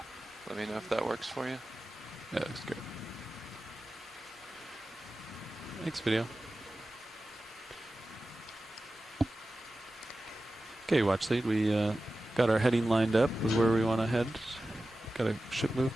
Let me know if that works for you. Yeah, looks good. Thanks, video. Okay, watch lead. We got our heading lined up with where we want to head. Got a ship move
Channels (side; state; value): both; normal; correlation 0.94